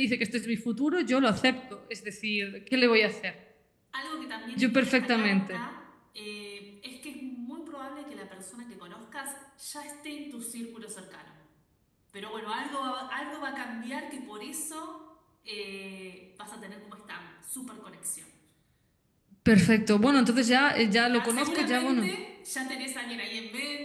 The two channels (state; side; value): identical; both; correlation 1.00